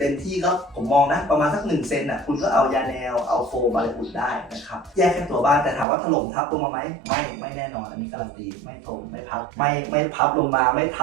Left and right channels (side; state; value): left; drops out; at 5.9 s